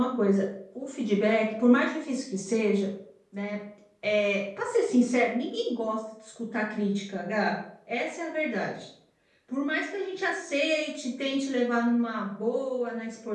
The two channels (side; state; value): both; identical; correlation 1.00